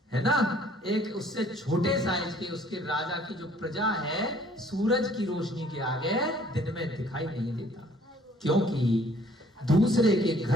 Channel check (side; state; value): both; normal; correlation 0.58